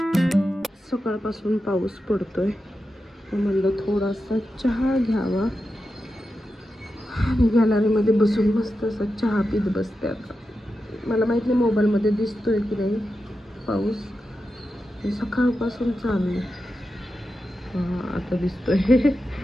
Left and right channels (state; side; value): normal; both; correlation 0.90